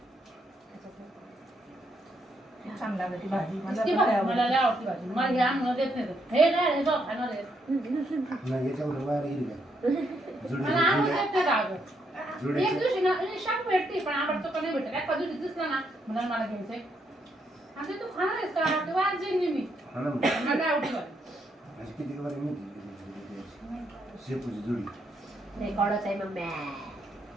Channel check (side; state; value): both; normal; correlation 0.76